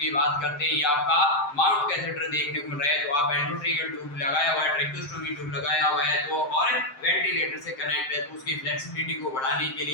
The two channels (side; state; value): right; late; 7.6 ms